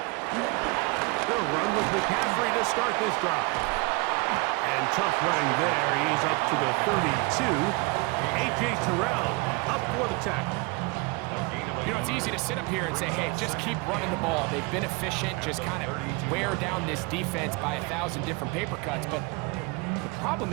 McCaffrey to start this drive. And tough running there. He's up to the 32. A.J. Terrell up for the tackle. You know, it's easy to sit up here and say, hey, just keep running the ball. They've been efficient, just kind of wear down this defense by 1,000 different paper cuts. But the problem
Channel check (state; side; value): quieter; left; 27.2 dB